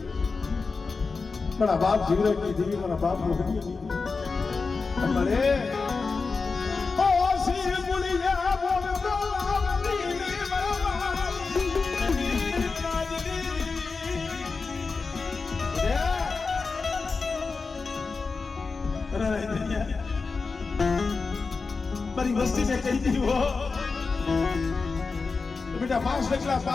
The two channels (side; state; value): right; quieter; 4.4 dB